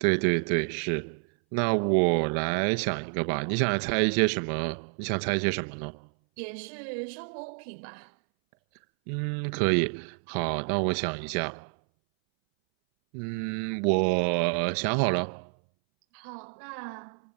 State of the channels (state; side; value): silent; left; 59 dB below the other